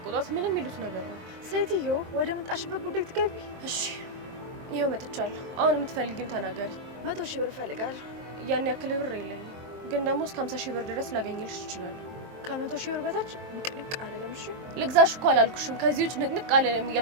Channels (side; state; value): left; late; 23 ms